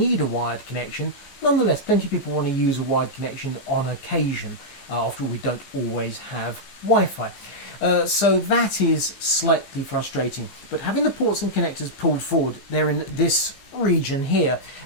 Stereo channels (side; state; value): right; late; 15 ms